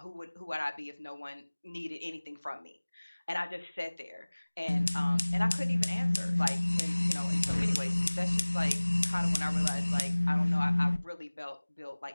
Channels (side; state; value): both; inverted; correlation -1.00